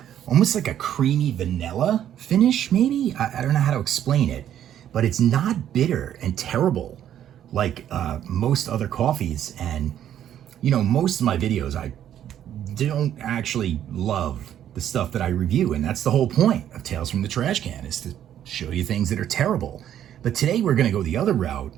almost like a creamy vanilla finish. Maybe I don't know how to explain it, but it's not bitter and terrible like most other coffees. And you know, most of my videos, I don't actually love the stuff that I review, and that's the whole point of Tales from the Trash Can, is to show you things that are terrible. But today we're going to go the other route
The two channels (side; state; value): left; quieter; 10.6 dB